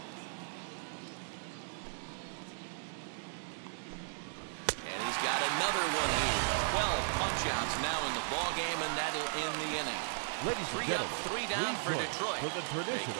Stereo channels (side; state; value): left; silent; digital silence